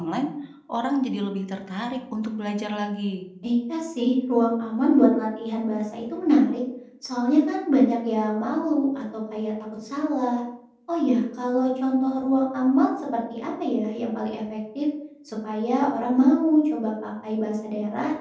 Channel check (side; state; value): both; identical; correlation 1.00